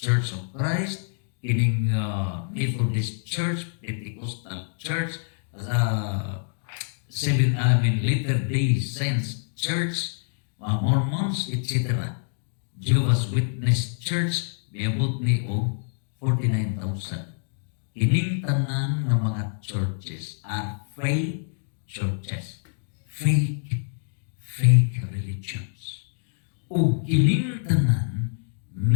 of Christ, kining Methodist Church, Pentecostal Church, Latter-day Saints Church, Mormons, etc. Jehovah's Witness Church, miabot ni og 49,000. Kining tanan nga mga churches are fake churches, fake religions. O kining tanan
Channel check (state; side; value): silent; right; digital silence